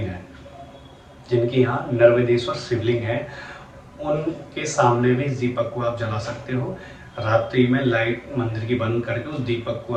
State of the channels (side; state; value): both; identical; correlation 1.00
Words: है, जिनके यहाँ नर्मदेश्वर शिवलिंग है, उनके सामने भी इस दीपक को आप जला सकते हो। रात्रि में लाइट मंदिर की बंद करके उस दीपक को